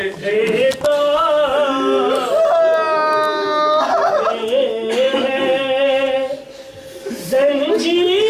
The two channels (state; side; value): identical; both; correlation 1.00